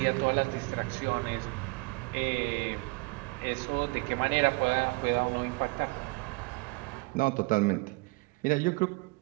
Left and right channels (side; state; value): left; quieter; 27.0 dB